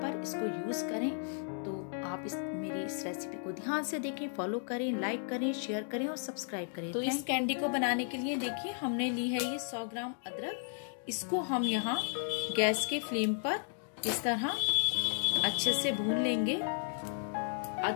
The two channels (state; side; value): silent; right; 55 dB below the other